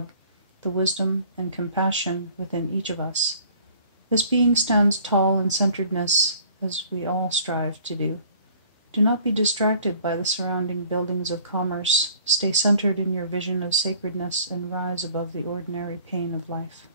the wisdom and compassion within each of us. This being stands tall in centeredness, as we all strive to do. Do not be distracted by the surrounding buildings of commerce. Stay centered in your vision of sacredness and rise above the ordinary pain of life.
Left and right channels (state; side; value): inverted; both; correlation -0.53